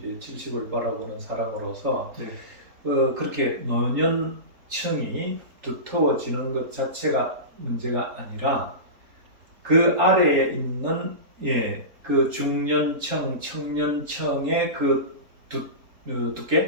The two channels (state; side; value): late; left; 4.0 ms